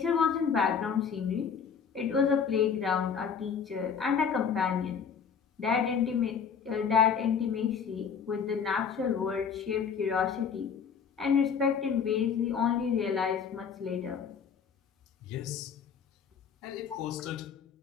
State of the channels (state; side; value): quieter; right; 6.8 dB